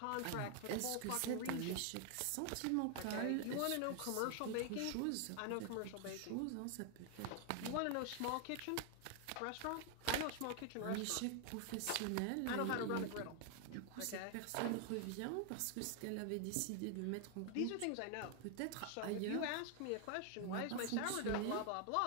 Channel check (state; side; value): different; both; correlation 0.00